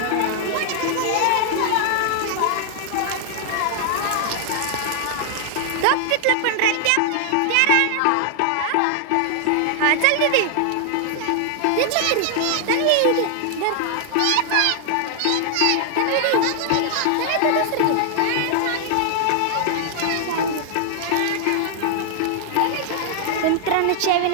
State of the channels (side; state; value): both; different; correlation 0.00